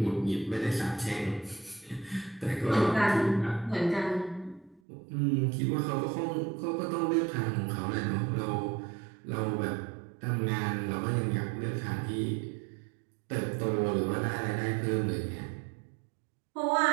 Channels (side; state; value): left; drops out; at 4.8 s